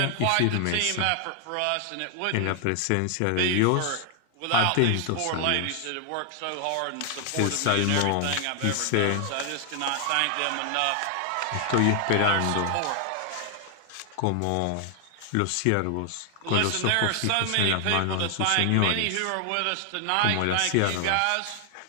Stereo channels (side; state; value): both; different; correlation 0.00